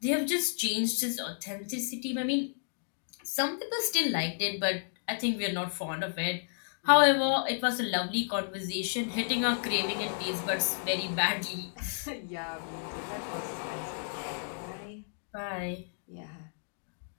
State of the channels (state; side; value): silent; right; digital silence